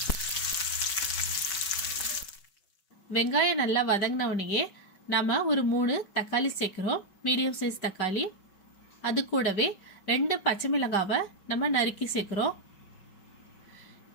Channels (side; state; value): right; late; 5.3 ms